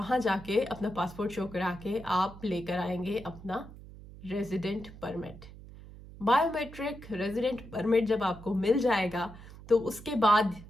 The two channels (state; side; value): noise; right; hum, 17 dB below the sound